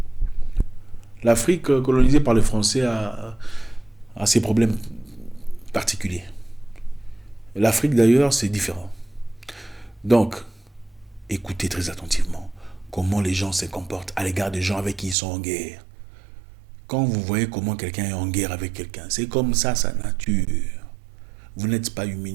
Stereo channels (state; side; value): drops out; left; at 15.2 s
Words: L'Afrique colonisée par les Français a ses problèmes particuliers. L'Afrique d'ailleurs, c'est différent. Donc, écoutez très attentivement comment les gens se comportent à l'égard des gens avec qui ils sont en guerre. Quand vous voyez comment quelqu'un est en guerre avec quelqu'un, c'est comme ça sa nature. Vous n'êtes pas